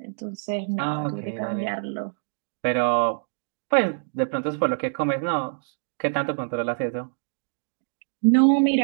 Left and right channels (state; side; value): silent; left; digital silence